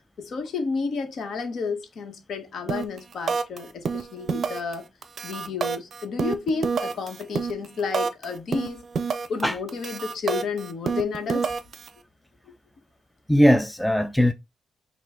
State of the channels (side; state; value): both; normal; correlation 0.85